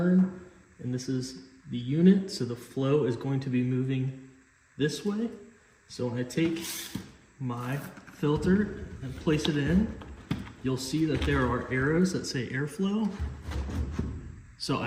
and this is the unit. So the flow is going to be moving this way. So when I take my filter and place it in, you'll see that there are arrows that say airflow. So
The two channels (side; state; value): both; identical; correlation 1.00